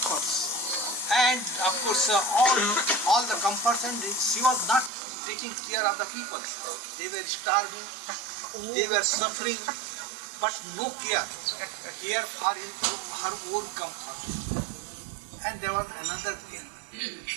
and of course all the comforts, and she was not taking care of the people. They were starving, they were suffering, but no care for her own comfort. And there was another king,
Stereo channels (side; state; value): left; drops out; at 4.9 s